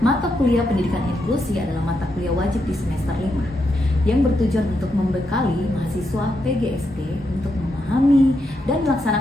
Mata kuliah pendidikan inklusi adalah mata kuliah wajib di semester 5 yang bertujuan untuk membekali mahasiswa PGSD untuk memahami dan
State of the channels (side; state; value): both; normal; correlation 0.82